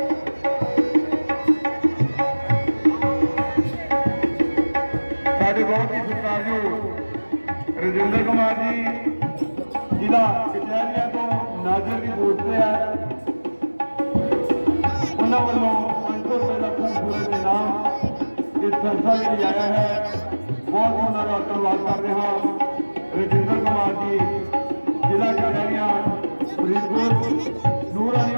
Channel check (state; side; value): inverted; both; correlation -1.00